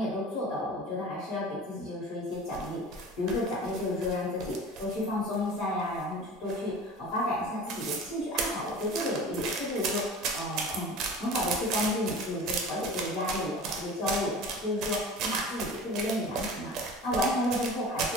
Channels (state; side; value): normal; both; correlation 0.38